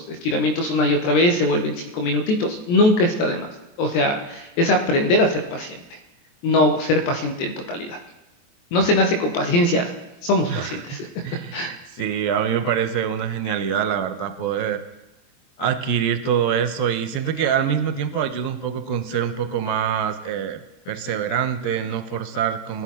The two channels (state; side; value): late; right; 23 ms